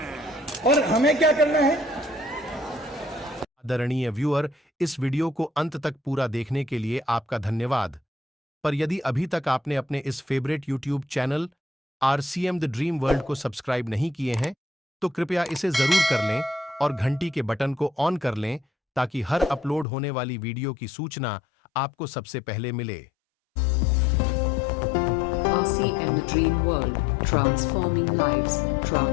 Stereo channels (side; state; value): right; drops out; at 19.9 s